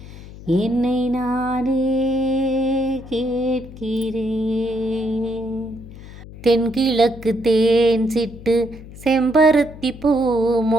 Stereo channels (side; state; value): left; noise; hum, 16 dB below the sound